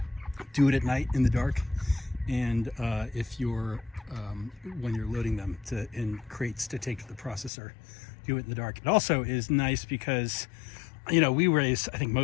do it at night in the dark, and if you're when you're loading them in crates to take to the processor, do it in the dark. It also is nice because, you know, I think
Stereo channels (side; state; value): right; drops out; at 7.5 s